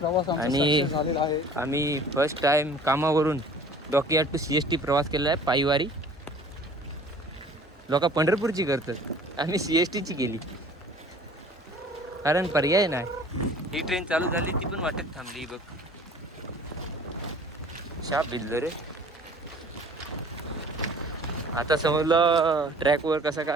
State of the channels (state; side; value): normal; both; correlation 0.49